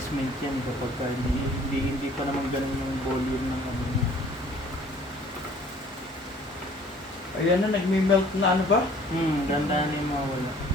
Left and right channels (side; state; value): both; normal; correlation 0.54